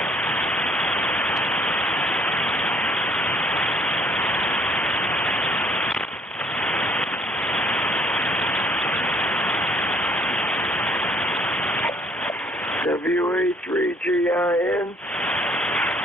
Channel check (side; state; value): both; normal; correlation 0.62